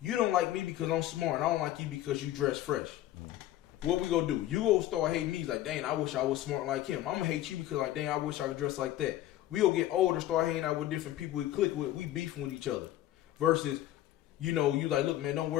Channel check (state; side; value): quieter; right; 13.7 dB